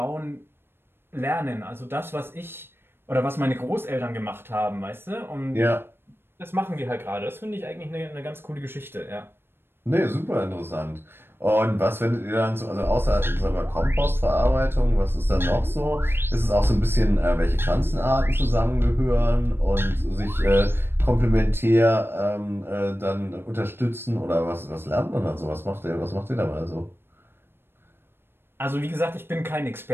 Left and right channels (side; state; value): left; late; 0.11 ms